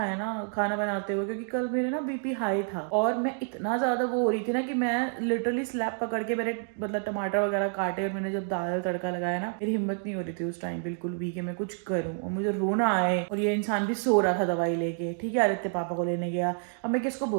ना खाना बनाते हुए, क्योंकि कल मेरे ना बीपी हाई था, और मैं इतना ज्यादा वो हो रही थी ना कि मैं लिटरली स्लैब पकड़ के मेरे मतलब टमाटर वगैरह काटे, और मैंने जब दाल तड़का लगाया ना, मेरी हिम्मत नहीं हो रही थी उस टाइम बिल्कुल भी कि मैं कुछ करूं, और मुझे रोना आए। और ये इंसान भी सो रहा था दवाई लेके, ठीक है, आदित्य पापा को लेने गया। अब मैं किसको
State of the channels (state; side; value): silent; left; 55 dB below the other